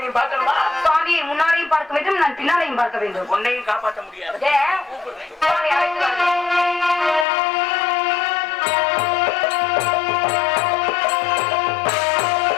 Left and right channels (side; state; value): right; drops out; at 7.2 s